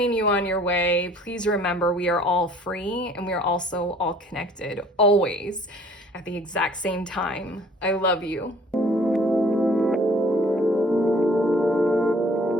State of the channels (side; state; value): both; normal; correlation 0.54